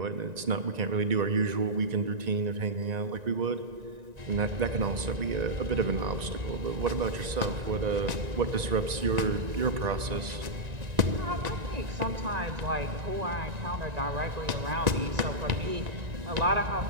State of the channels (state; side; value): late; left; 1.9 ms